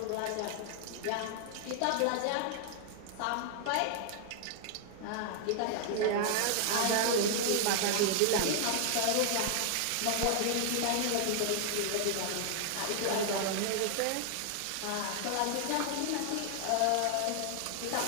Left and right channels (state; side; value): different; both; correlation 0.00